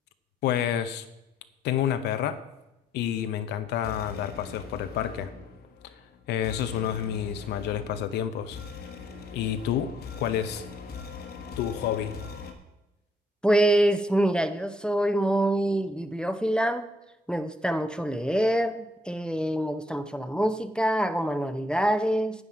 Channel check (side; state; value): both; normal; correlation 0.68